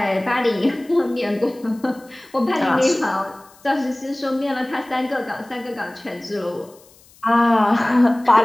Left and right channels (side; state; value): left; noise; hiss, 27 dB below the sound